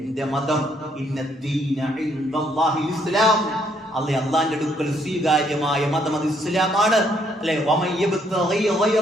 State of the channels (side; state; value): both; normal; correlation 0.70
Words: മതം ഇന്ന ദീന ഇൻദല്ലാഹിൽ ഇസ്ലാം, അള്ളാന്റെ അടുക്കൽ സ്വീകാര്യമായ മതം അത് ഇസ്ലാമാണ്. അല്ലെ,